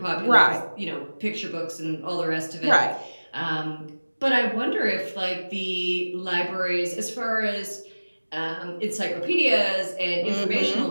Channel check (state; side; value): inverted; both; correlation -1.00